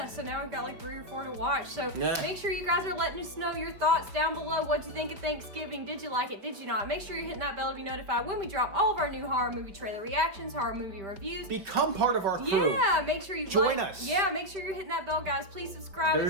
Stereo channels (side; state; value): left; late; 5.0 ms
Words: so now we've got like 3 or 4 to watch. So Yeah. make sure you guys are letting us know your thoughts down below. What'd you think of Thanksgiving? Did you like it? Did you not? Make sure you're hitting that bell to be notified when we drop all of our new horror movie trailer reactions, horror movie reviews. Become part of our crew. Yeah, make sure you Join like, us. Yeah, make sure you're hitting that bell, guys. Please subscribe if